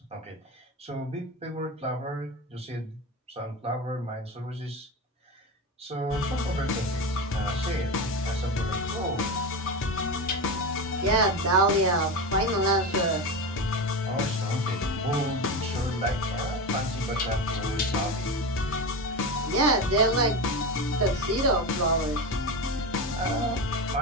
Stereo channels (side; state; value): both; normal; correlation 0.20